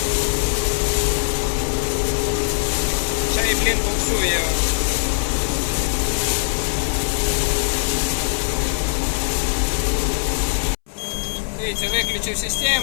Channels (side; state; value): right; silent; 65 dB below the other